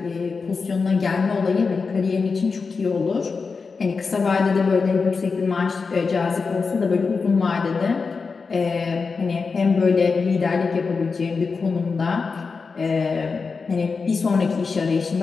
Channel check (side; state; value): right; quieter; 4.8 dB